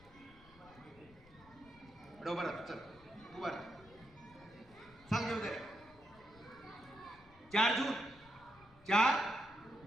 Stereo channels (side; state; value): left; noise; rumble, 24 dB below the sound